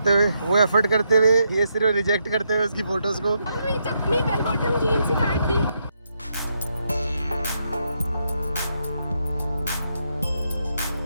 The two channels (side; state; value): both; inverted; correlation -0.80